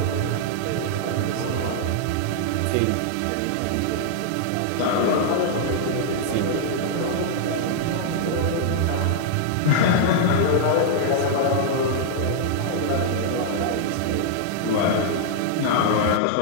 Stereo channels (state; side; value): different; both; correlation -0.01